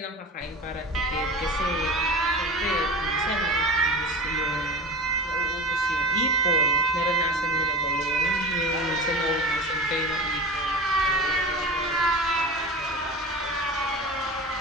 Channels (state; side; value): normal; both; correlation 0.31